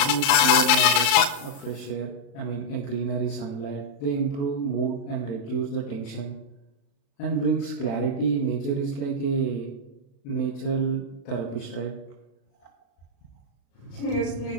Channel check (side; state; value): right; late; 36 ms